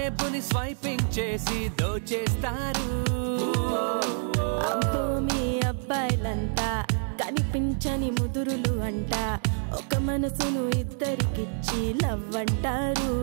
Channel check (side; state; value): left; silent; 60 dB below the other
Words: స్వైపింగ్ చేసి దోచేస్తారు. అమ్మో మీ అబ్బాయిలంతా కనిపించని ముదురులు అంట ఒక మనసును ఇద్దరికిచ్చి లవ్ అంటారు.